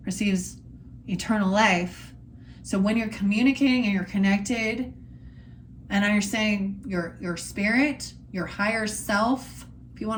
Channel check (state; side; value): identical; both; correlation 1.00